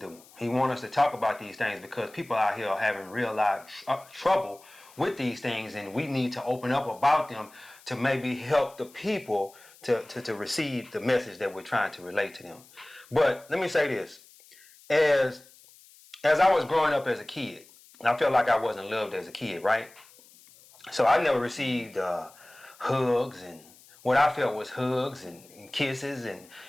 He wants us to talk about these things because people out here are having real life trouble with these things, and we need to open up about them to maybe help the people to receive the message that we're trying to relate to them. But let me say this. As I was growing up as a kid, I felt like I wasn't loved as a kid, right? So I never received hugs and what I felt was hugs and kisses and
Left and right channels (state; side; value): noise; left; hiss, 25 dB below the sound